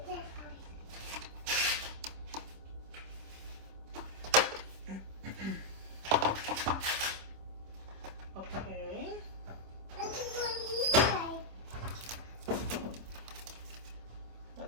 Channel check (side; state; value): left; late; 26 ms